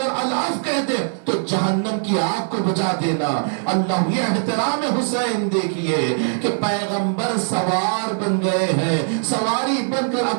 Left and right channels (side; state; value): left; silent; digital silence